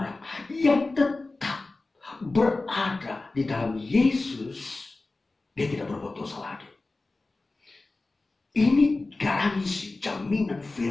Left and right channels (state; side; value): quieter; right; 3.3 dB